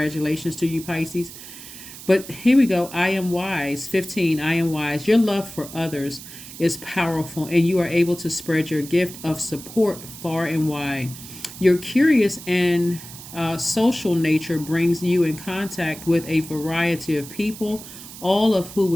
to you, Pisces. But here we go. I am wise. 15, I am wise. Your love for others is powerful, and you are able to spread your gift of support far and wide. Your curious and social nature brings you in contact with a variety of people, all of who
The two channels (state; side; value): noise; right; hiss, 14 dB below the sound